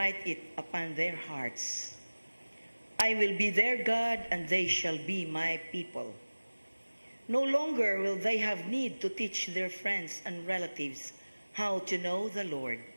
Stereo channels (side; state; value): both; inverted; correlation -1.00